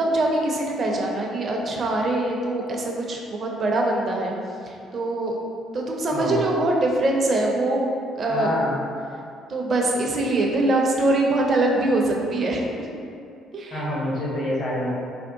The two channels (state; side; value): normal; both; correlation 0.69